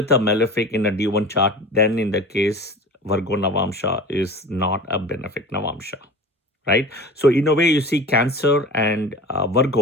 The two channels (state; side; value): normal; both; correlation 0.37